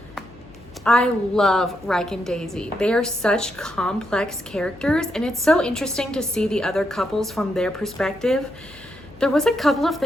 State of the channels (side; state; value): left; noise; hum, 24 dB below the sound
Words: I love Ryke and Daisy. They are such complex characters, and it's so interesting to see the other couples from their perspective. There was a couple of